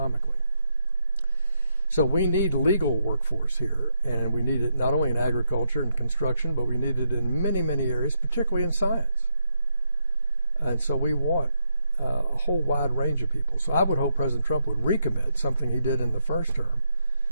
So we need legal workforce here, and we need it not only in agriculture and construction, but we need it in many, many areas, particularly in science. And so we want a whole wide range of people. So I would hope President Trump would recommit something he did in the first term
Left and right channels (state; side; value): inverted; both; correlation -0.79